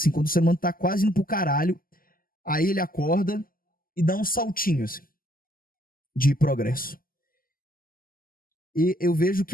ser humano tá quase indo pro caralho, aí ele acorda e dá um saltinho, assim, de progresso. E eu vejo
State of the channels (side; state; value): right; late; 0.42 ms